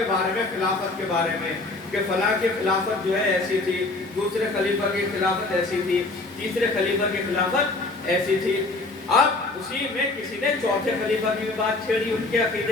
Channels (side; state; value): right; quieter; 3.2 dB